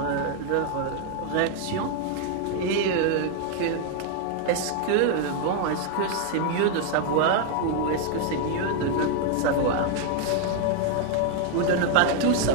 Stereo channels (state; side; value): different; both; correlation 0.00